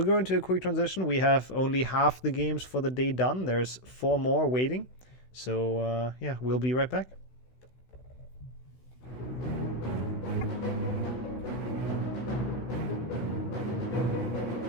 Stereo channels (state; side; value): late; right; 16 ms